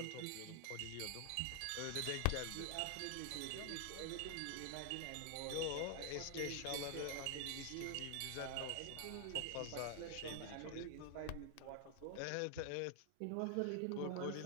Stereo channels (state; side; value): different; both; correlation 0.00